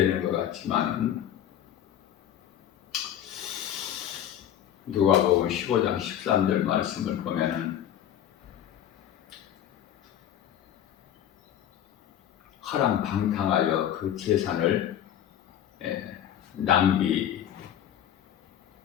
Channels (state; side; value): quieter; right; 10.5 dB